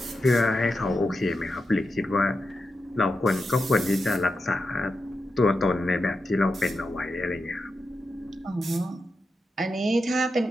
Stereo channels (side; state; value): both; normal; correlation 0.88